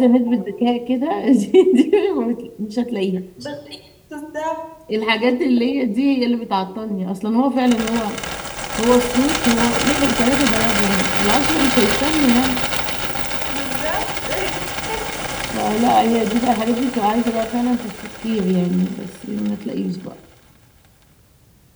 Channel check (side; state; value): both; identical; correlation 1.00